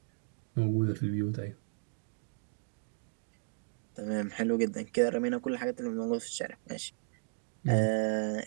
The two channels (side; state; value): left; silent; digital silence